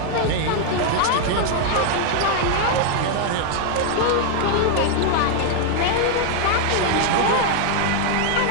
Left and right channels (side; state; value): both; different; correlation 0.00